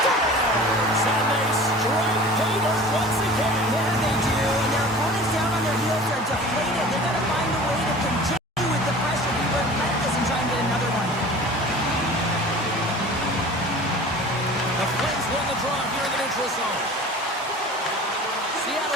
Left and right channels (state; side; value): normal; both; correlation 0.41